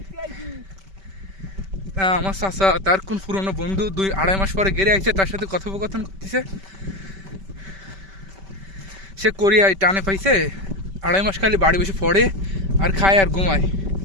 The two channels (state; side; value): late; left; 5.2 ms